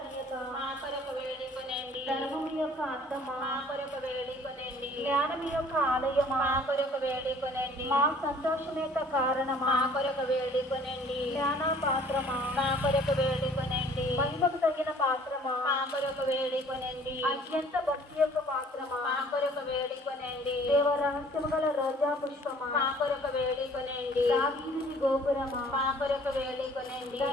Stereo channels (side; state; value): both; normal; correlation 0.54